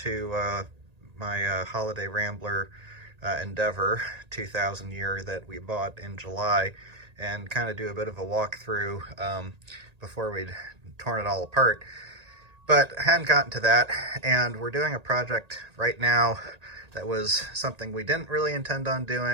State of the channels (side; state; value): left; late; 1.8 ms